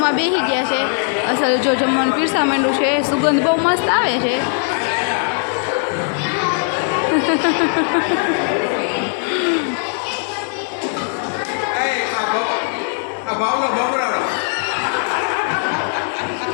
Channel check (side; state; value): right; silent; 55 dB below the other